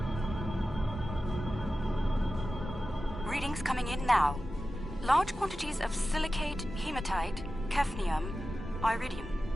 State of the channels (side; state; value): both; normal; correlation 0.94